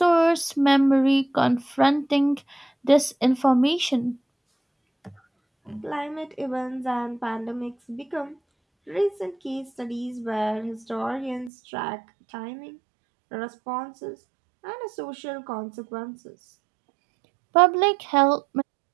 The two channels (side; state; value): left; drops out; at 11.5 s